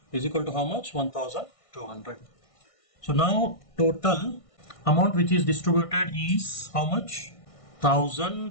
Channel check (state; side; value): late; right; 1.5 ms